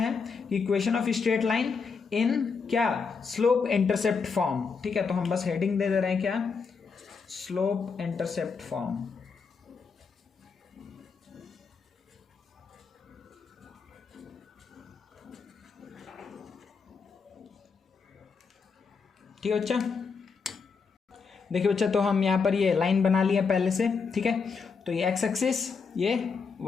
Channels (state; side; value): quieter; right; 5.3 dB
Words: equation of straight line in क्या, स्लोप इंटरसेप्ट फॉर्म, ठीक है। तो हम बस हेडिंग दे रहे हैं क्या, स्लोप इंटरसेप्ट फॉर्म। ठीक है बच्चा, देखिए बच्चा, तो हम यहाँ पर ये लाइन बना लिया पहले से, ठीक है। तो ये एक्स एक्सिस, ये